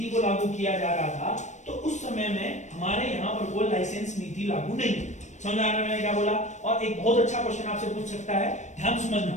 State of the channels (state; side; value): late; right; 0.34 ms